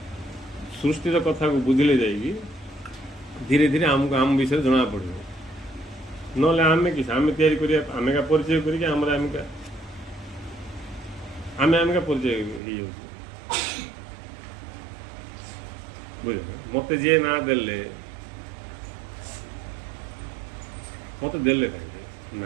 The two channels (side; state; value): left; drops out; at 12.6 s